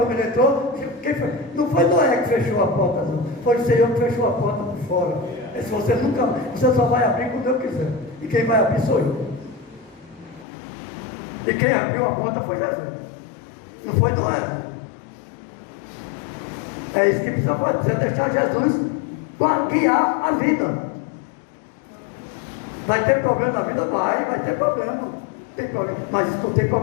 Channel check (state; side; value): drops out; right; at 10.5 s